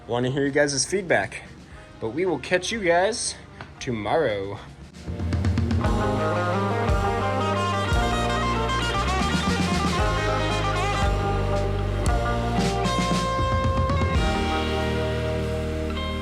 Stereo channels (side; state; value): both; identical; correlation 1.00